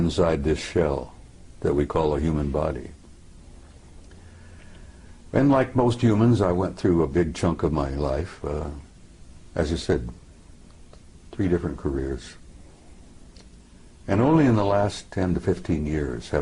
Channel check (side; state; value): both; identical; correlation 1.00